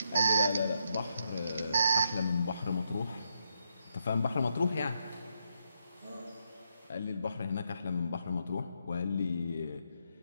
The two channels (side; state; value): both; inverted; correlation -0.79